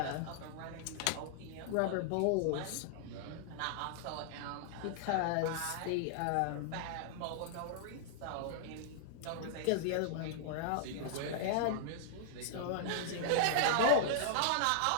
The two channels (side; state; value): both; different; correlation -0.01